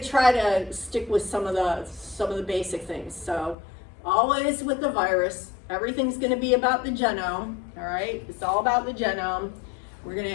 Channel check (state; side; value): drops out; right; at 3.6 s